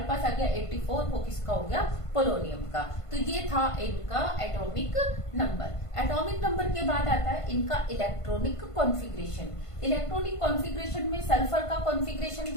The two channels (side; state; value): right; late; 1.5 ms